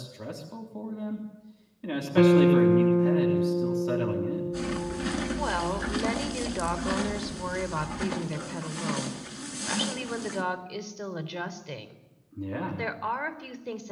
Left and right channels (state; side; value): identical; both; correlation 1.00